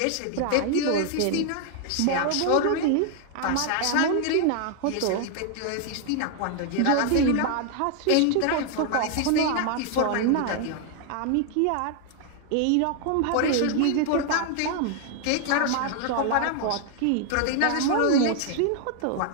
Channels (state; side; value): different; both; correlation 0.00